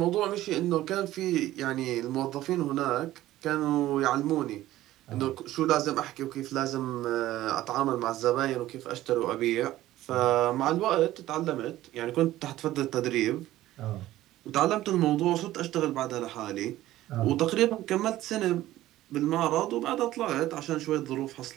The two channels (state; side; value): quieter; left; 15.0 dB